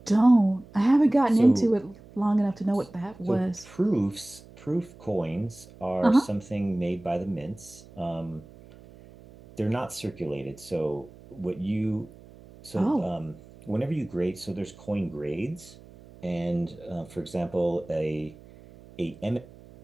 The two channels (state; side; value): noise; right; hum, 21 dB below the sound